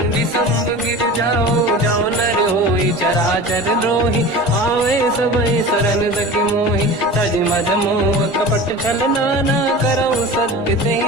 संग गिर जाओ। जाओ नर होई चराचर द्रोही, आवे सबई शरण सखी मोहि। तज मद मोह कपट छल नाना, करऊ सत्य ते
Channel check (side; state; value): both; normal; correlation 0.35